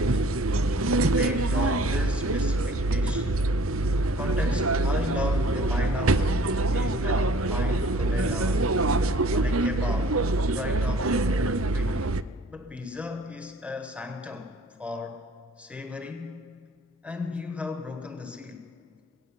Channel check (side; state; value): both; normal; correlation 0.52